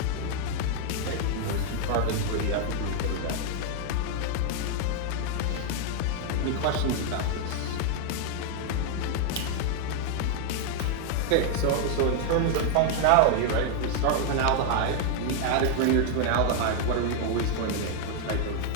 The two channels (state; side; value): different; both; correlation 0.00